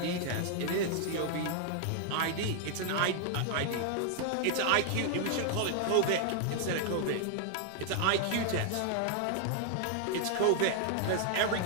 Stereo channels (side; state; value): both; different; correlation 0.00